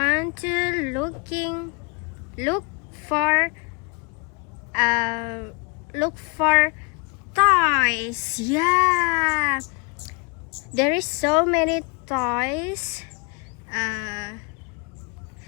to look for toys. Yeah, there is so many toys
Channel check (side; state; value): right; quieter; 32.0 dB